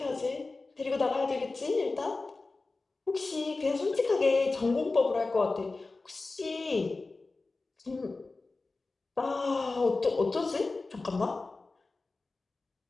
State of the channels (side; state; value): right; quieter; 3.6 dB